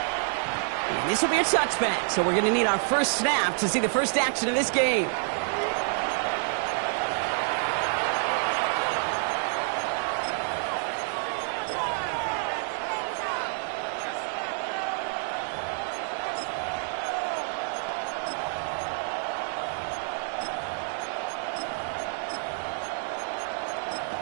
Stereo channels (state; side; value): silent; left; 57 dB below the other